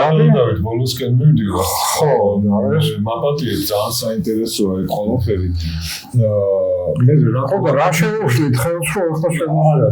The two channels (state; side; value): identical; both; correlation 1.00